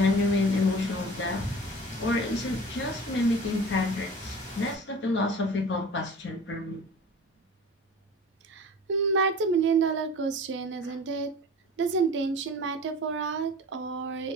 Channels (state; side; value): normal; both; correlation 0.39